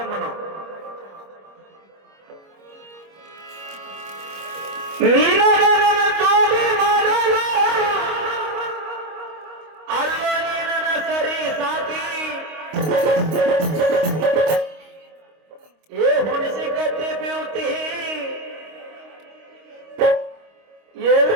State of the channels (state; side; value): late; left; 25 ms